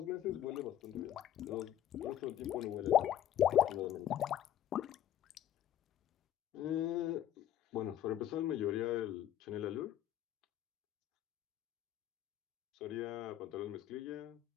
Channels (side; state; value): right; quieter; 11.4 dB